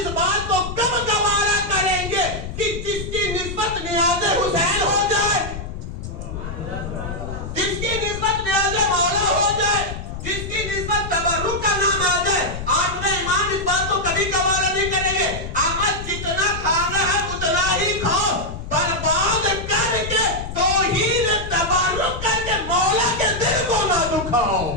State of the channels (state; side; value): noise; left; rumble, 8 dB below the sound